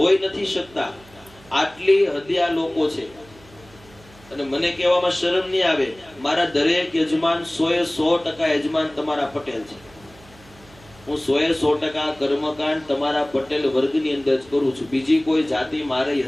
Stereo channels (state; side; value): noise; right; hum, 25 dB below the sound